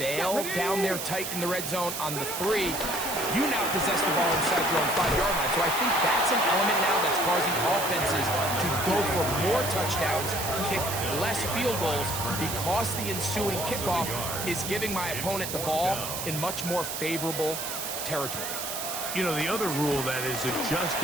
fail down there tight in the red zone on the 3, you now possess the ball inside your own 5-yard line. So I think that's an element now that's causing offenses to go for more touchdowns, kick less field goals, because the ensuing kickoff is giving my opponent the ball in much more favorable territory. You know, the other rule that is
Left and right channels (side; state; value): right; noise; hiss, 5 dB below the sound